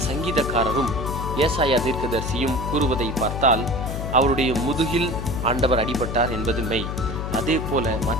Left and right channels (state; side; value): noise; left; hum, 4 dB below the sound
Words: சங்கீதக்காரரும் ஏசாயா தீர்க்கதரிசியும் கூறுவதை பார்த்தால் அவருடைய முதுகில் ஆண்டவர் அடிபட்டார் என்பது மெய். அதே போல